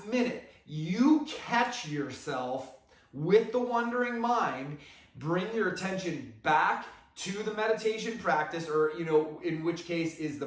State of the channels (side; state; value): both; identical; correlation 1.00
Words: minute, you catch yourself with the wandering mind, bring your attention back to the meditation practice, or, in which case is the